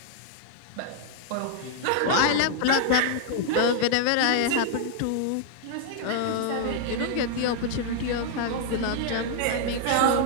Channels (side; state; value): both; different; correlation -0.01